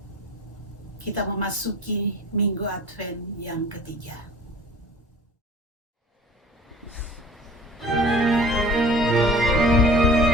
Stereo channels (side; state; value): both; normal; correlation 0.44